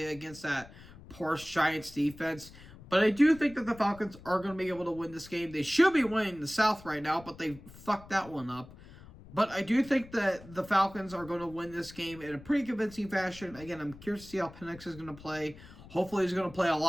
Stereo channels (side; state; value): left; noise; rumble, 19 dB below the sound